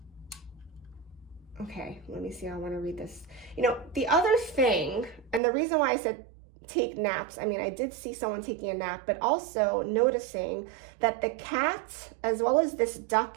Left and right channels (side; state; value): left; drops out; at 5.4 s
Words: okay, let me see, I want to read this. You know, the other thing, and the reason why I said take naps. I mean, I did see someone taking a nap, but also noticing that the cat as well as this duck